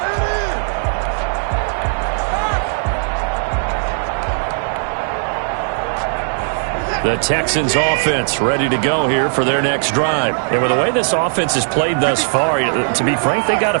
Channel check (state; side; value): silent; left; 56 dB below the other